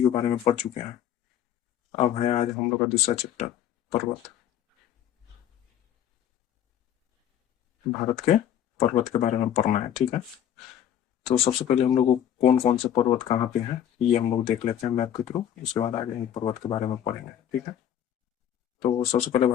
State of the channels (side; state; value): right; quieter; 10.3 dB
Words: बारे में पढ़ चुके हैं। अब है आज हम लोग का दूसरा चैप्टर, पर्वत। भारत के पर्वत के बारे में पढ़ना है, ठीक है। तो सबसे पहले हम लोग को कौन कौन से पर्वत कहाँ पे हैं ये हम लोग देख लेते हैं मैप के थ्रू। उसके बाद आगे हम पर्वत के बारे में पढ़ेंगे, ठीक है। तो सबसे पहले